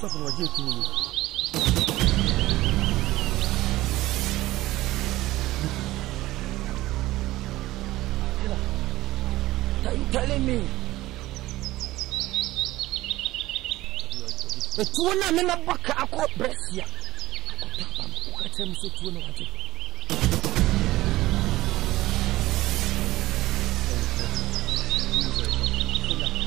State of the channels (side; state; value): left; quieter; 16.9 dB